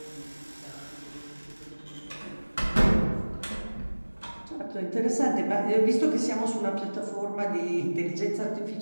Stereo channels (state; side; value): inverted; both; correlation -1.00